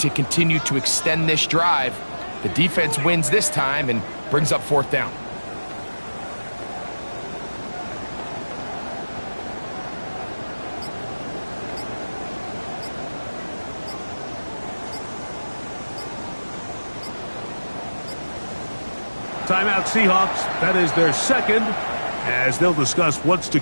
continue to extend this drive. The defense wins this time and brings up 4th down. Timeout Seahawks. That is their 2nd, as they'll discuss what's to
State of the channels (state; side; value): inverted; both; correlation -1.00